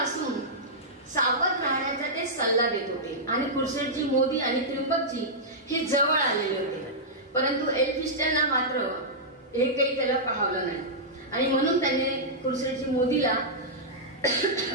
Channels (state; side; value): normal; both; correlation -0.11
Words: सावध राहण्याचा ते सल्ला देत होते आणि खुर्शीदजी मोदी आणि त्र्यंबकजी हे जवळ आलेले होते. परंतु एल्फिस्टनला मात्र हे काही त्याला पाहवलं नाही आणि म्हणून त्याने खुर्शीदजी मोदीला